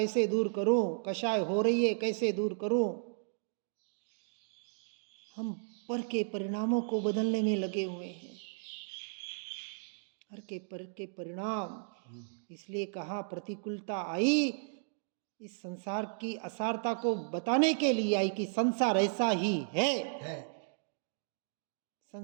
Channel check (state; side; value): silent; left; digital silence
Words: दूर करूं, कषाय हो रही है कैसे दूर करूं। हम पर के परिणामों को बदलने में लगे हुए हैं, हर के पर के परिणाम। इसलिए कहा प्रतिकूलता आई इस संसार की असारता को बताने के लिए आई कि संसार ऐसा ही है।